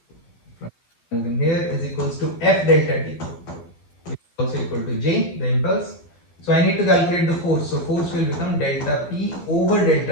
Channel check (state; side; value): late; right; 12 ms